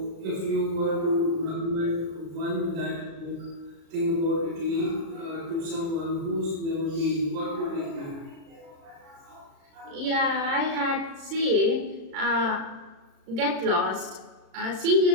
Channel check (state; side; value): late; left; 36 ms